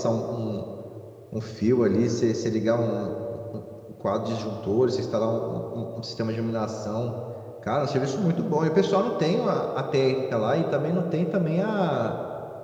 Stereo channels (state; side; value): identical; both; correlation 1.00